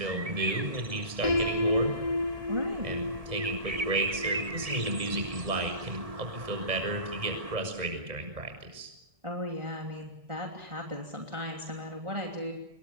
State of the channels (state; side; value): late; left; 1.6 ms